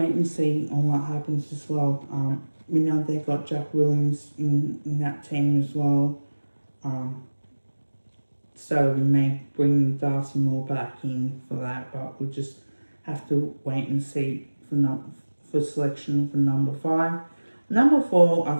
and see on what happens as well. We know they've got Jack Williams in that team as well. So we may bring Darcy Moore back in for that, but we'll just have to wait and see for selection for number 5. Number 4, I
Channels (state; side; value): inverted; both; correlation -1.00